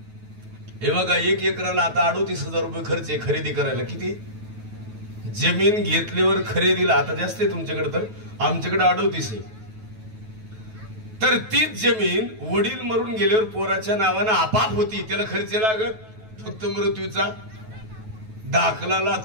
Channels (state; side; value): late; left; 9.3 ms